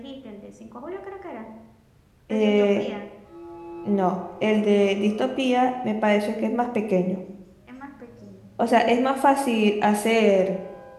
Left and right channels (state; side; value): identical; both; correlation 1.00